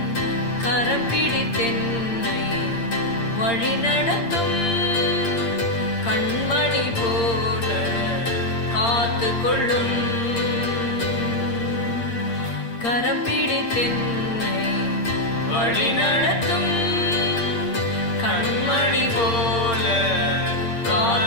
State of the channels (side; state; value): right; late; 8.7 ms